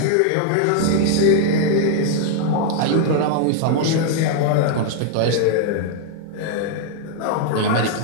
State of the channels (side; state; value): both; different; correlation 0.00